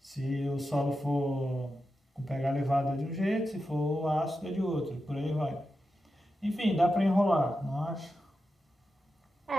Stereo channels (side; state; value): both; normal; correlation 0.90